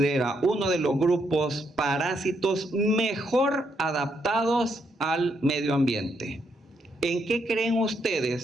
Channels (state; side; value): normal; both; correlation 0.76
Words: uno de los grupos parásitos mejor adaptados al medio ambiente. ¿En qué creen